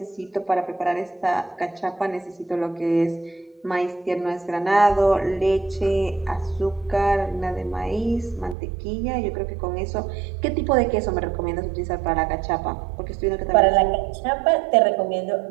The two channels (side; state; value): left; drops out; at 8.6 s